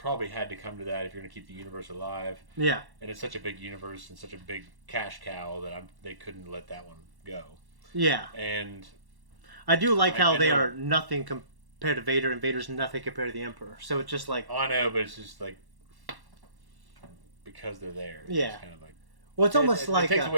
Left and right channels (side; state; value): left; late; 1.1 ms